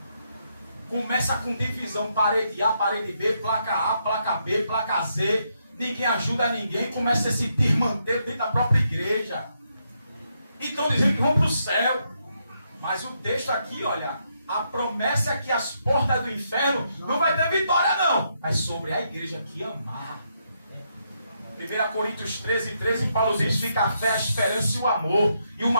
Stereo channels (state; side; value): inverted; both; correlation -0.78